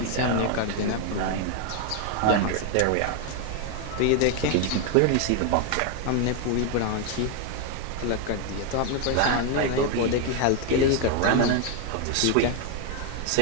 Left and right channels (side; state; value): both; different; correlation 0.01